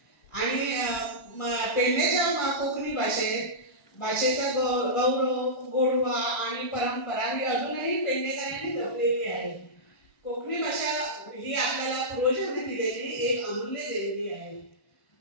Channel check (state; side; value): late; right; 1.3 ms